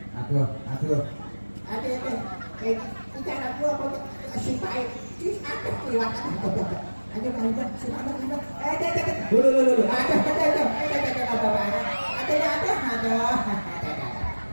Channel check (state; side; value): inverted; both; correlation -1.00